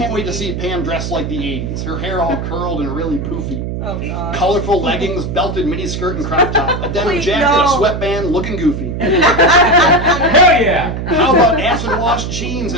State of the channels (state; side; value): noise; right; hum, 4 dB below the sound